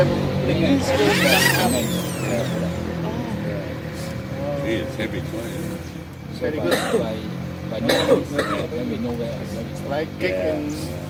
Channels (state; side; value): identical; both; correlation 1.00